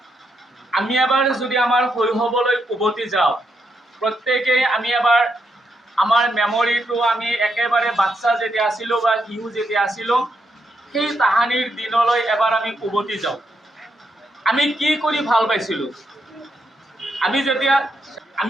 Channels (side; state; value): both; normal; correlation 0.80